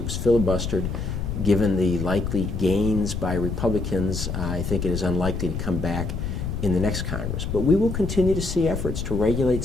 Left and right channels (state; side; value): noise; left; rumble, 4 dB below the sound